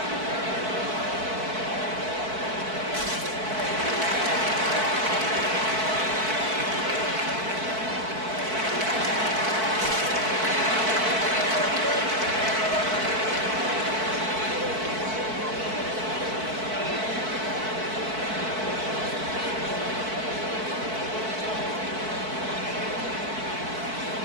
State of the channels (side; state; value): left; late; 4.5 ms